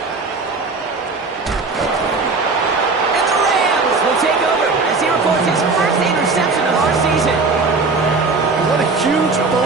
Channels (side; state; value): left; quieter; 4.0 dB